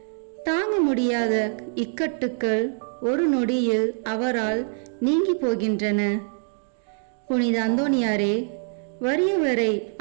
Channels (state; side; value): silent; left; digital silence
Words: தாங்க முடியாத இக்கட்டுக்கள் ஒரு நொடியில் அவரால் நீங்கி போகின்றன. புனித அந்தோனியாரே, வறியவரை